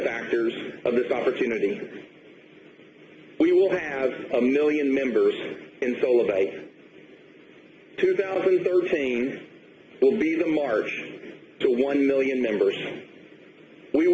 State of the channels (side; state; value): both; identical; correlation 1.00